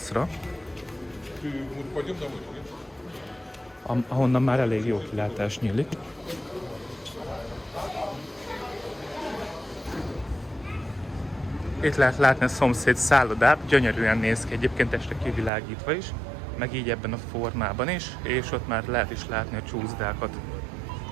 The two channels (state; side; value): drops out; left; at 15.5 s